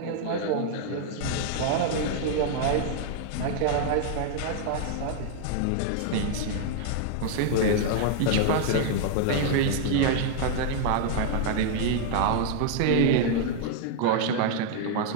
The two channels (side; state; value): both; different; correlation 0.00